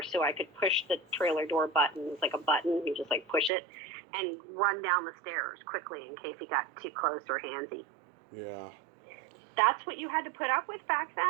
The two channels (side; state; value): left; drops out; at 3.5 s